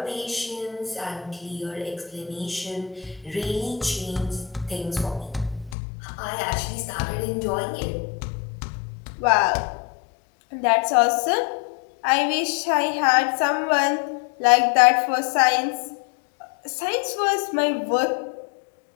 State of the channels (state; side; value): drops out; right; at 5.8 s